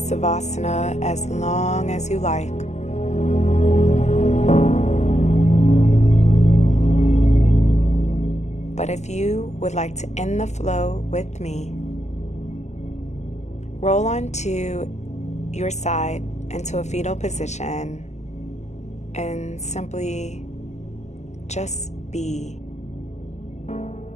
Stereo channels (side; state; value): right; late; 0.33 ms